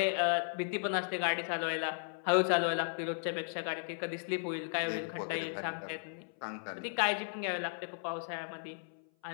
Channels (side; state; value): right; silent; 54 dB below the other